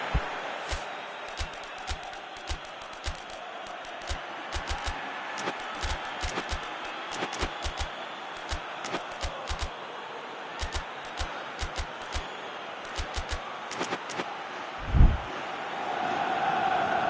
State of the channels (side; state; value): both; identical; correlation 1.00